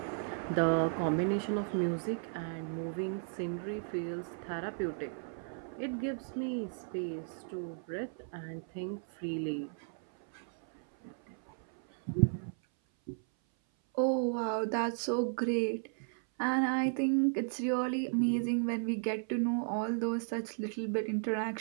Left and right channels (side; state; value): left; silent; 55 dB below the other